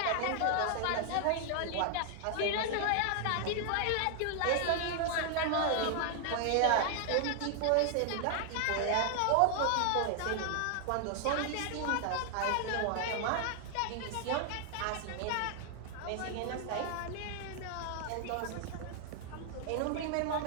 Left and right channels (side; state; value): both; different; correlation 0.00